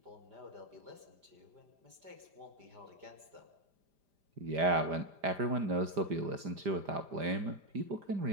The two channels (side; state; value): left; late; 5.0 ms